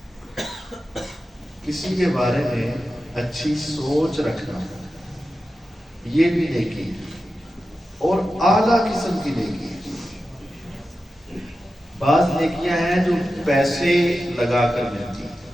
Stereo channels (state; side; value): normal; both; correlation 0.92